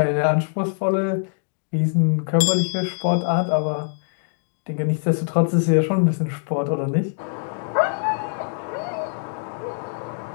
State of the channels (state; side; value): silent; right; digital silence